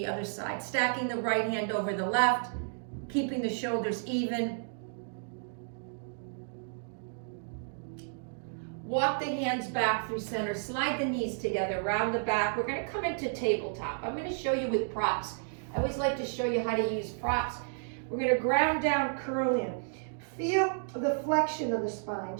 other side, stacking the right hand over the left, keeping the shoulders even. Walk the hands back through center, slide the knees together, round the back. We're going to come into tabletop. I'm going to show you with props. I always like to show you how to use props. We're going to ground down, curl in. Feel the flexion of the spine,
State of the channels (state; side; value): silent; left; digital silence